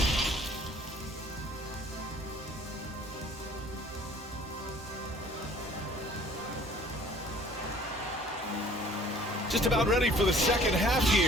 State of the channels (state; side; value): normal; both; correlation 0.54